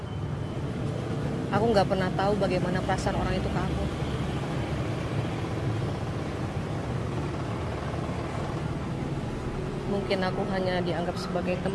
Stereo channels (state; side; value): identical; both; correlation 1.00